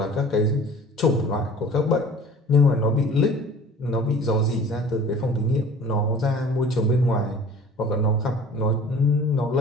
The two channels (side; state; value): both; normal; correlation 0.45